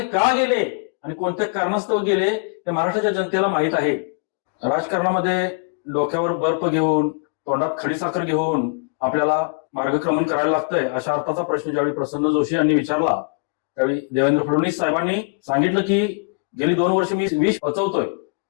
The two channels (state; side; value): quieter; right; 36.0 dB